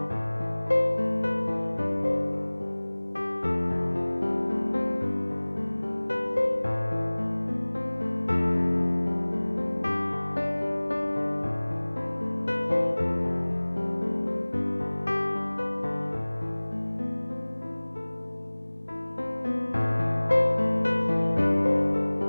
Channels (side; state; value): both; inverted; correlation -1.00